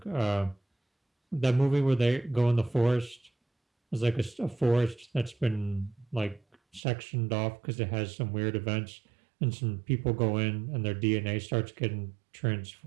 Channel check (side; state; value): left; drops out; at 6.8 s